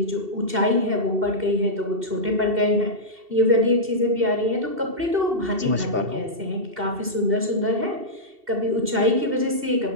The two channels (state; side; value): late; left; 2.7 ms